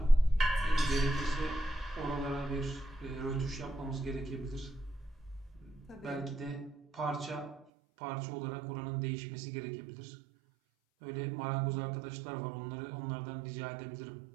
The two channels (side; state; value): left; drops out; at 7.7 s